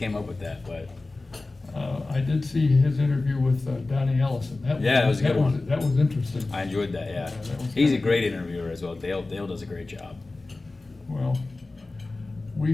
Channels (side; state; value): right; quieter; 3.3 dB